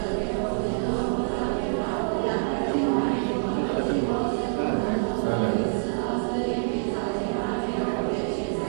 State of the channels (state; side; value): silent; left; digital silence